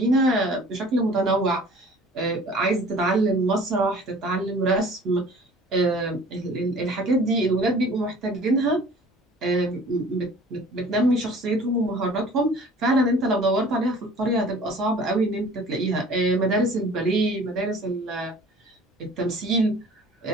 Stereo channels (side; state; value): both; normal; correlation 0.48